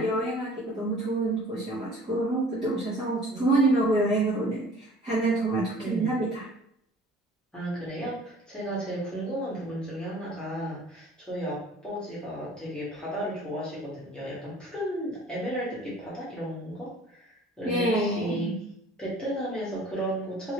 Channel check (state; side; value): normal; both; correlation 0.50